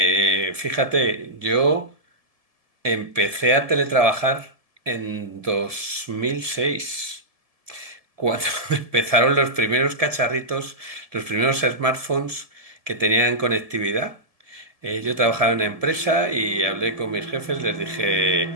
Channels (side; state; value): left; late; 1.7 ms